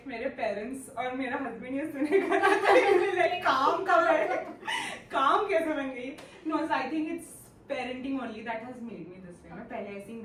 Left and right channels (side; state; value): both; identical; correlation 1.00